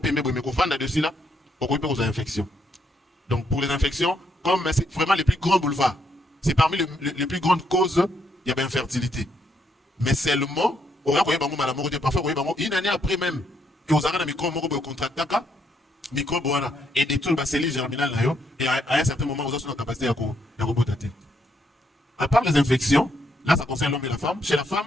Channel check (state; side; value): normal; both; correlation 0.75